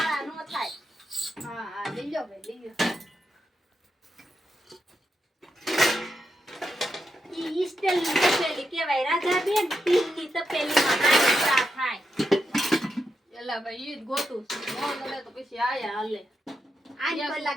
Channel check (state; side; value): normal; both; correlation 0.85